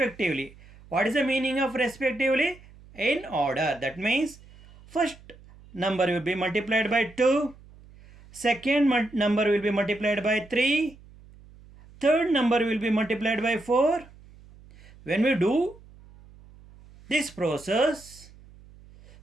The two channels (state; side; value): noise; right; hum, 23 dB below the sound